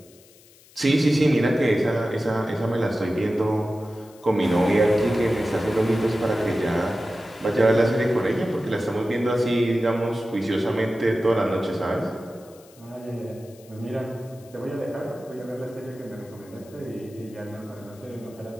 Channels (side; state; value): left; noise; hiss, 26 dB below the sound